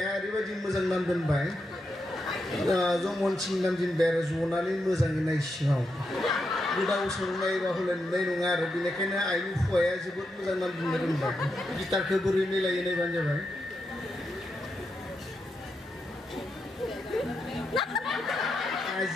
ओरैबायदि मोजां नाम दोनबाय जमनसिं नामजों बेर जनानै मोजाङै नाय सिङाव गोदाव सोराव नायबा हले नुनाय नङा आरो बेनिखायनो आइनि फुवाया जोबोद मोजां नाम दोननो रोंबाय गिटारखौ बोरै मिलायो नायबानो जाबाय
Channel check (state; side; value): normal; both; correlation 0.85